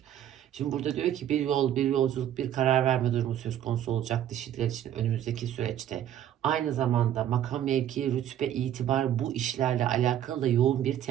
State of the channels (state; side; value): quieter; left; 11.1 dB